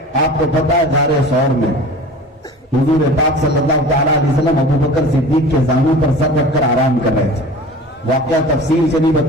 آپ کو پتا ہے غار ثور میں حضور پاک صلی اللہ تعالیٰ علیہ وسلم ابو بکر صدیق کے زانوں پر سر رکھ کر آرام کر رہے تھے. واقعہ تفصیل سے نہیں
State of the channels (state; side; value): normal; both; correlation 0.39